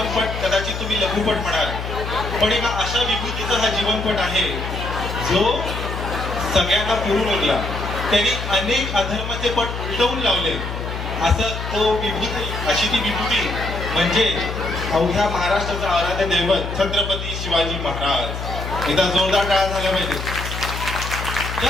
कदाचित तुम्ही लघुपट म्हणाल, पण एका अशा विभूतीचा हा जीवनपट आहे जो सगळ्यांना पुरून उरला. त्यांनी अनेक अधर्माचे पट उलटवून लावले. असं तो विभूती, अशी ती विभूती म्हणजे अवघ्या महाराष्ट्राचा आराध्य दैवत छत्रपती शिवाजी महाराज. एकदा जोरदार टाळ्या झाल्या पाहिजे.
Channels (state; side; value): noise; left; hum, 6 dB below the sound